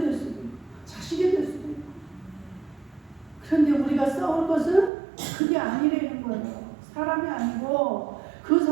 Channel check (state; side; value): drops out; left; at 4.9 s